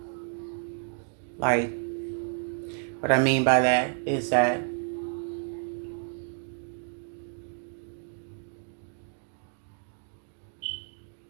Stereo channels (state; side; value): silent; left; 56 dB below the other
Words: Like, what I mean by that is that